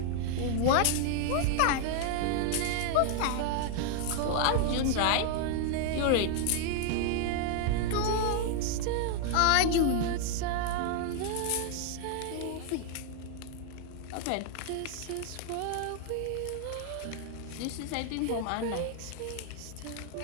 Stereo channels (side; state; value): both; different; correlation 0.00